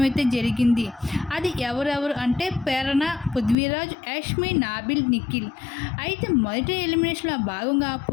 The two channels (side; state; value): right; drops out; at 3.6 s